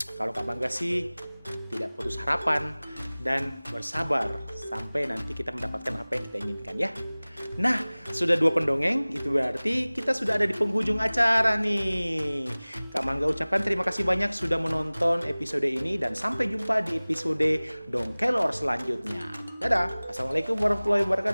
Kalau Kak Mangga sih tidak putus harapan dan bersabar sampai nanti kita mendapatkan apa yang kita inginkan ya. Nah, sudah 2 pendongeng, itu berarti kita sudah ada di penghujung acara nih. Kak Mangga ucapkan terima kasih banyak sudah menonton episode ini dan sampai jumpa di episode Dongkelor selanjutnya. Dadah, Assalamualaikum warahmatullahi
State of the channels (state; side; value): inverted; both; correlation -0.99